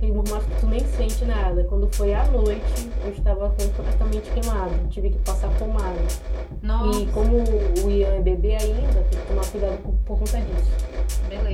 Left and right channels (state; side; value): identical; both; correlation 1.00